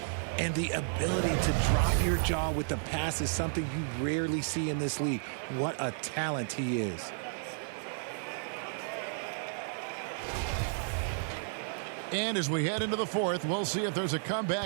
And the ability to drop your jaw with the pass is something you rarely see in this league. What a talent he is. And as we head into the fourth, we'll see if there's a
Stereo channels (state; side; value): silent; left; 56 dB below the other